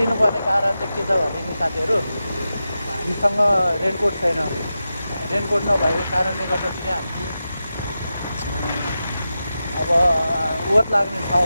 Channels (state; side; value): inverted; both; correlation -0.91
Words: कारण चाहिँ के छ भने नि साथीहरू हामीसँग रेनकोट छैन रेनकोट नभएको कारणले गर्दाखेरि हामी अब ओत लाग्ने